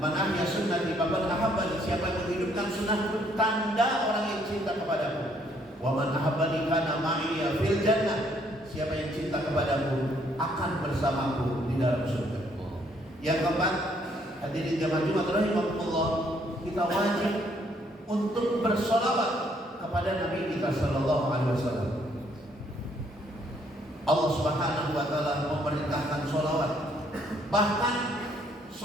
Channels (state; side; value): normal; both; correlation 0.67